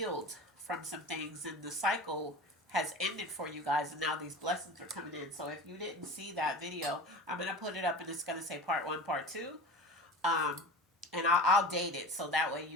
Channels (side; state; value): both; normal; correlation 0.33